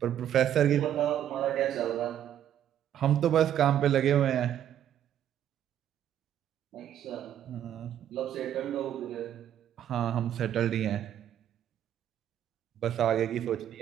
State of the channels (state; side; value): quieter; left; 10.5 dB